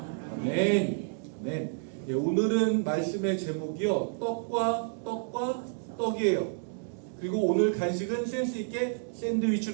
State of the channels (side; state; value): left; silent; digital silence